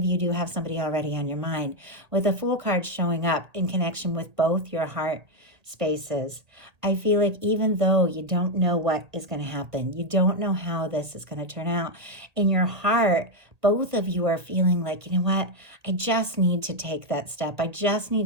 you do have somebody already on your mind, with the Fool card showing up in connection with both your heart spaces. I feel like even though you don't know what is going to happen, you don't know how this is going to turn out, in your heart, both of you are feeling like, you know what, I just need to take that step. I just need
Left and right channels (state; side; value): late; left; 1.8 ms